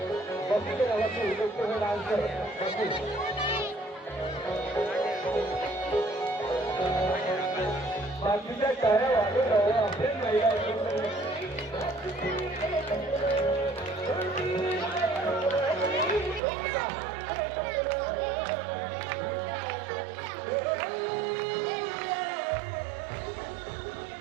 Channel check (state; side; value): drops out; left; at 16.4 s